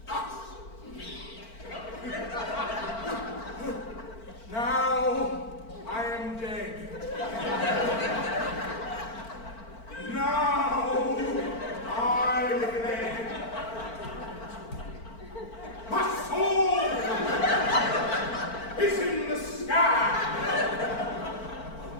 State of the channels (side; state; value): right; late; 4.4 ms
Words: Thus. Now I am dead. Now I live. My soul is in the sky.